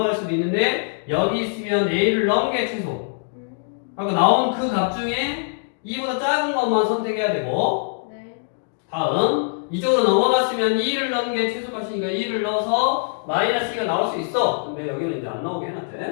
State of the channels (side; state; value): right; silent; digital silence